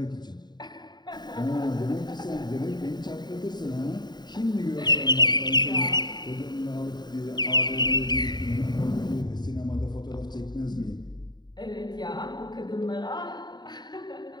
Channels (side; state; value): right; late; 0.21 ms